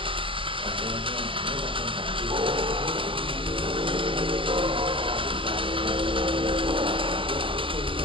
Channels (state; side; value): late; left; 0.25 ms